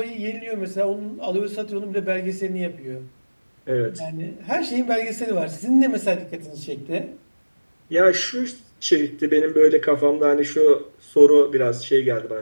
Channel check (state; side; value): inverted; both; correlation -1.00